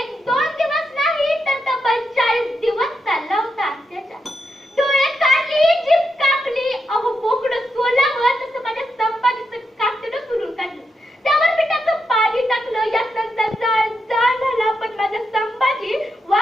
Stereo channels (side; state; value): both; normal; correlation 0.84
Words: दिवस नाही तर तब्बल 40 दिवस चालला होता अत्याचार. डोळे काढली, जीभ कापली, अहो बोकडं सोलावं तसं माझ्या संपादीचं कातडं सुरून काढलं. त्यावर मिठाचं पाणी टाकलं. यात नंतर जाळ झाला, पण माझा संपादी